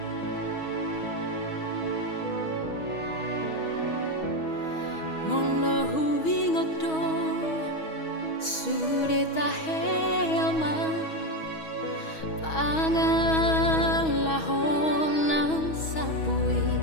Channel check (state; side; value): late; right; 6.3 ms